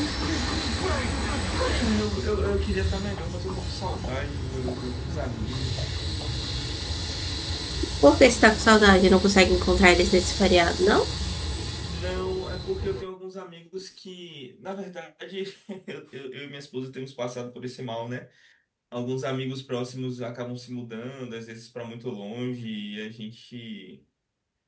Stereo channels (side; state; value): both; identical; correlation 1.00